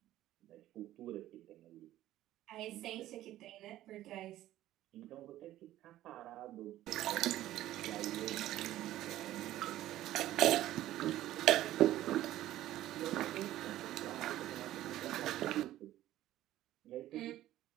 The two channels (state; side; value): quieter; left; 14.2 dB